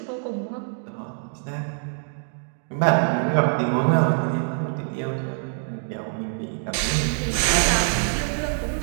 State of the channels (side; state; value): left; silent; 62 dB below the other